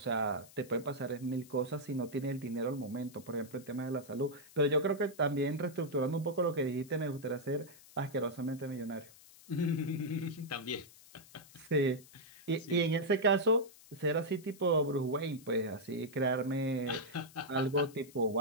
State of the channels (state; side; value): noise; left; hiss, 22 dB below the sound